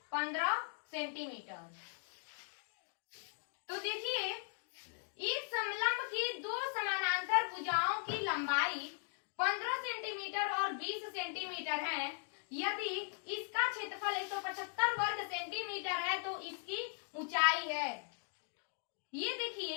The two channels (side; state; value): right; silent; 52 dB below the other